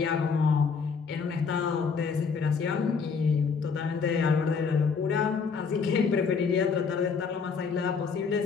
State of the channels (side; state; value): right; quieter; 5.6 dB